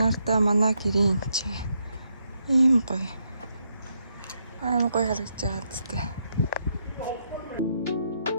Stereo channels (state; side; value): inverted; both; correlation -0.78